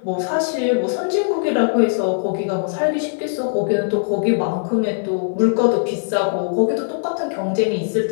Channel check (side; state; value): right; silent; 66 dB below the other